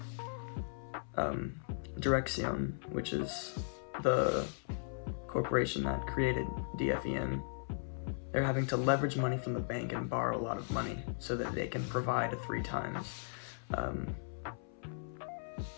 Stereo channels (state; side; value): silent; right; 53 dB below the other